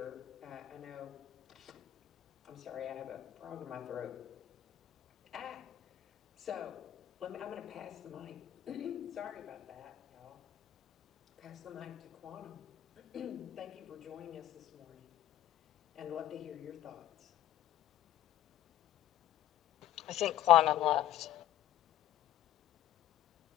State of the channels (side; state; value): right; quieter; 12.9 dB